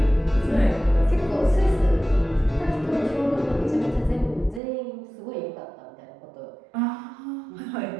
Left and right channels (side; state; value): left; drops out; at 4.6 s